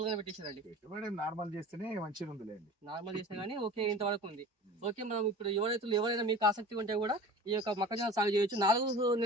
గానే పెట్టేశారండి? పెట్టుబడి నార్మల్ చేస్తేనే మంచిగా ఉంది. నార్మల్ చేసినా కానీ ఓకే, ఇంతవరకు ఉంది. ఓకే. మనం ఇప్పుడు యువ రైతులు ఎవరైనా మీకు ఆసక్తి ఉంటే కూడా ఈ యొక్క మొక్కజొన్న సాగు చేయొచ్చు. 4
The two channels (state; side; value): normal; both; correlation 0.38